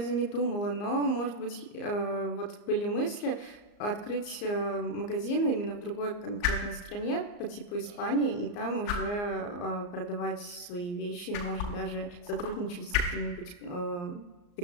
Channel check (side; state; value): right; late; 34 ms